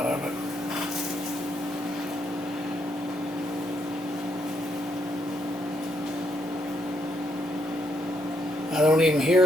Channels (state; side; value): normal; both; correlation 0.76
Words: of it. I don't even